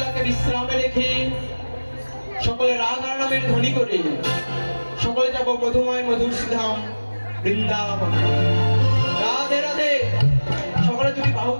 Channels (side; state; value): both; inverted; correlation -1.00